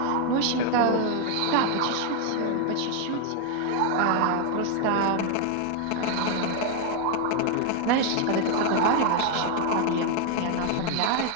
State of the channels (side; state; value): both; different; correlation 0.00